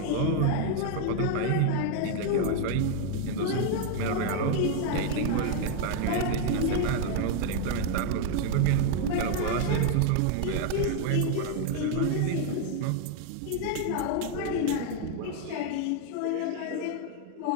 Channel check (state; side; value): different; both; correlation 0.00